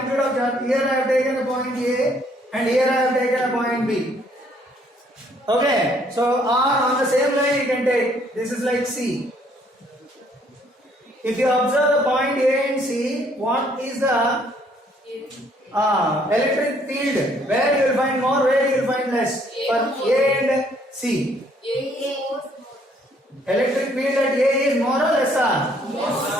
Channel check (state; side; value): normal; both; correlation 0.65